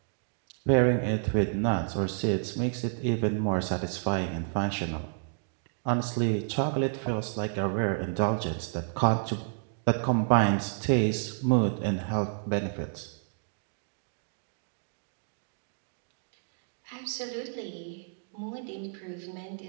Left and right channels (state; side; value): silent; left; digital silence